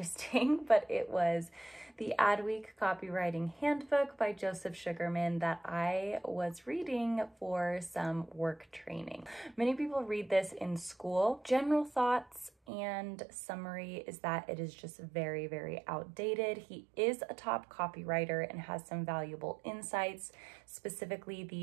but it was the Adweek Copywriting Handbook by Joseph Sugarman that I was reading for some work training. Many people read this in school. General thoughts and summary is that it is just very, very outdated. He is a top copywriter and has some valuable insights, specifically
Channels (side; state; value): left; drops out; at 12.5 s